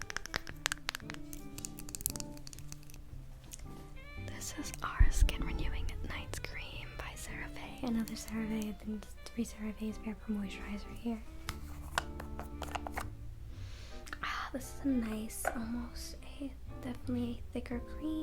Skin Renewing Night Cream by CeraVe. Another CeraVe. I've been 3 CeraVe's Vapor Moisturizer here. This is a nice, definitely a thicker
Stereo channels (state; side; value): identical; both; correlation 1.00